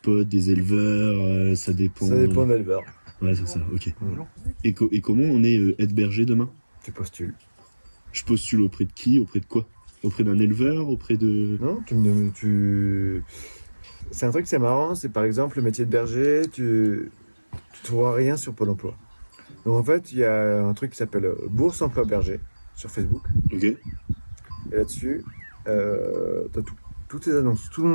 des éleveurs, ça dépend... Ça dépend de l'éleveur. Ouais, c'est ça, ok. Mm. Et comment on est aide berger demain? Tu postules. Je postule auprès de qui? Auprès de quoi? Auprès d'un éleveur? Auprès de... Non, c'est un truc, c'est marrant, c'est par exemple le métier de berger, tu trouveras rien sur Pôle emploi. Donc en fait, il y a un truc qui s'appelle Bourse Emploi Berger sur Facebook. Ok. Et là-dessus, t'as toutes tes annonces. Tout le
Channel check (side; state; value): both; inverted; correlation -1.00